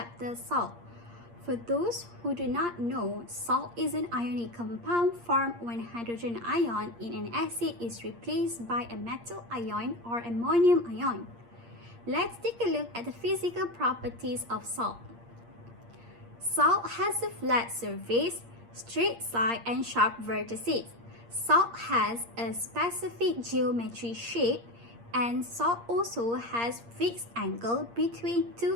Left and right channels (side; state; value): left; late; 8.6 ms